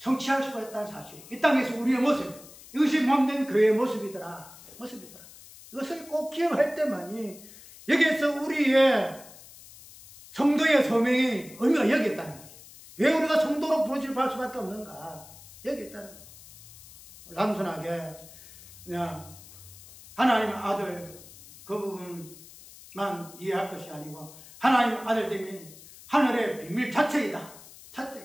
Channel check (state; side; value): noise; left; hiss, 19 dB below the sound